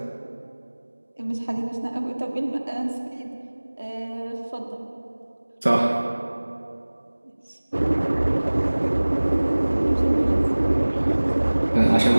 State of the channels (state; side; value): inverted; both; correlation -1.00